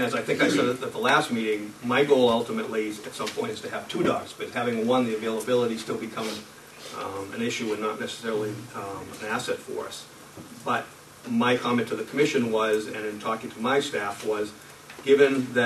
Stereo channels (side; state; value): both; identical; correlation 1.00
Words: as I think I said at the last meeting, my goal ultimately at some point is to have 2 dogs, but having one, the availability still becomes an issue and not necessarily an asset for us. But my comment to the commission was, and in talking to my staff, was given